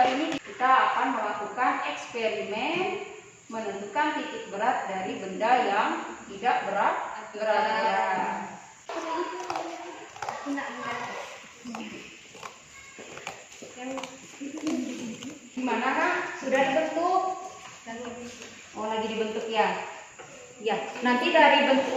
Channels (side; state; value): both; identical; correlation 1.00